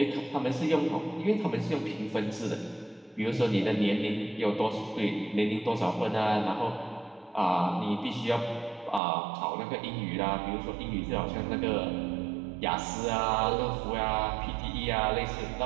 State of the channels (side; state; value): left; drops out; at 9.0 s